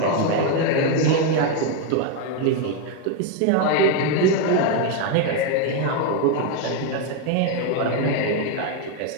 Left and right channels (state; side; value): different; both; correlation 0.02